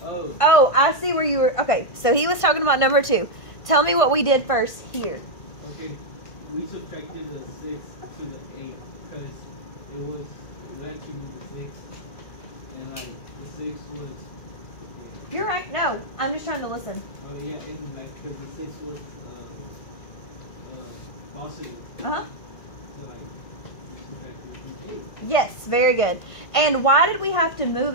Oh. Oh, I see where you were. Okay, so he was talking about number 2. Tell me what we did first here. Okay. We subtracted the 6 to the 8 because it was actually the 6, and like the 6 was. You're right. No, I'm just trying to listen. Oh yeah, and like because the 6 was positive. Uh-huh. So like subtracted the 8. Yes, very good. And why did we have to move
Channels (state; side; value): late; right; 1.6 ms